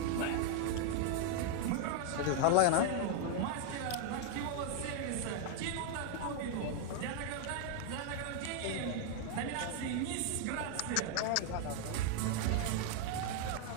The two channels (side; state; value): both; different; correlation 0.00